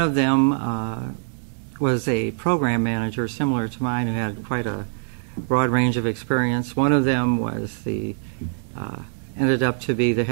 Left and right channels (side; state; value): left; silent; digital silence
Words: them was a program manager similar to mine who had quite a broad range of experience. One of them was ended up to be the